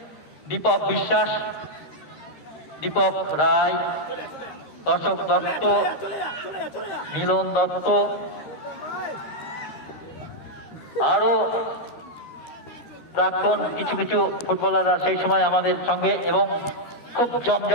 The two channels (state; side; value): late; right; 13 ms